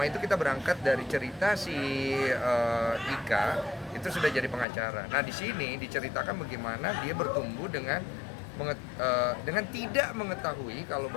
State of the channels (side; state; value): right; drops out; at 4.7 s